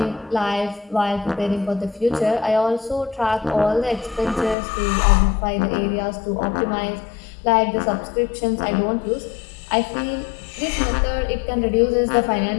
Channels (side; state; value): right; drops out; at 4.5 s